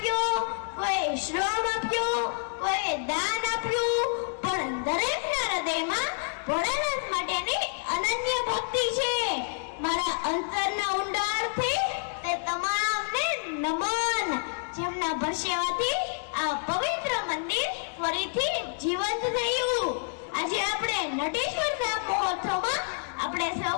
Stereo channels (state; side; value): silent; right; 59 dB below the other